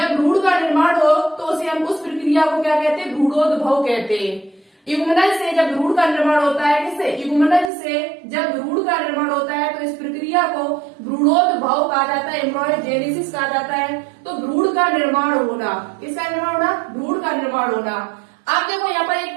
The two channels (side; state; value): left; drops out; at 7.7 s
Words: भ्रूण का निर्माण हो तो उसे हम उस प्रक्रिया को क्या कहते हैं? भ्रूणोद्भव कहते हैं। युग्मनज से जब भ्रूण का निर्माण होता है, किससे? युग्मनज से जब भ्रूण का निर्माण होता है तो इस प्रक्रिया को भ्रूणोद्भव कहा जाता है, एम्ब्रियोजेनेसिस कहा जाता है। तो भ्रूण का निर्माण होना, किसका निर्माण होना? भ्रूण का निर्माण होना। आप देखो यहाँ पर